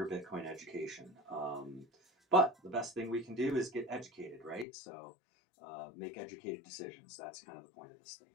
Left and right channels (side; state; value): right; drops out; at 4.7 s